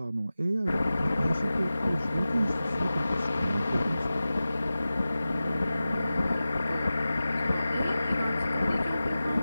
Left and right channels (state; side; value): inverted; both; correlation -0.95